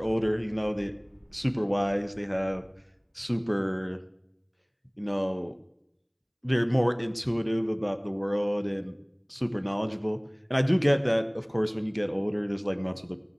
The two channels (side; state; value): both; identical; correlation 1.00